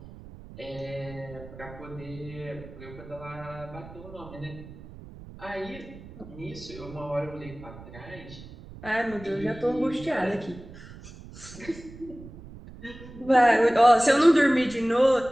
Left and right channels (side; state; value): right; noise; rumble, 16 dB below the sound